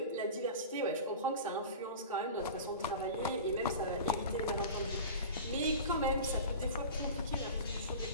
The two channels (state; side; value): inverted; both; correlation -0.33